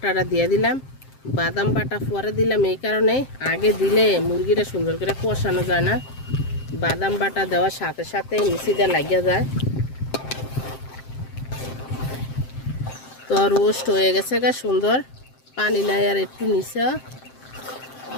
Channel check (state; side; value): late; right; 7.6 ms